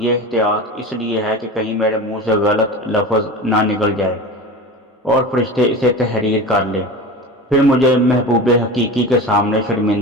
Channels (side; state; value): both; normal; correlation 0.30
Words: احتیاط اس لیے ہے کہ کہیں میرے منہ سے غلط لفظ نہ نکل جائے اور فرشتے اسے تحریر کر لیں، پھر مجھے محبوب حقیقی کے سامنے